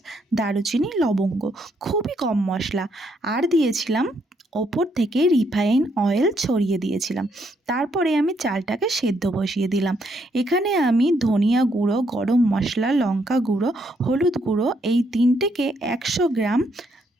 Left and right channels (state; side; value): normal; both; correlation 0.73